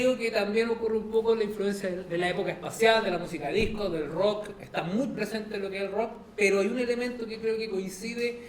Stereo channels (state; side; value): identical; both; correlation 1.00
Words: que también ocurre un poco la influencia de la época espacial, de la música disco, del rock, está muy presente en lo que es el rock, pero hay un elemento que creo que coincide